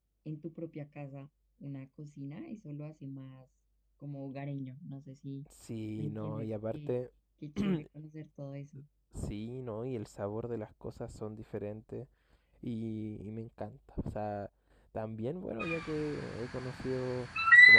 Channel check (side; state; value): both; identical; correlation 1.00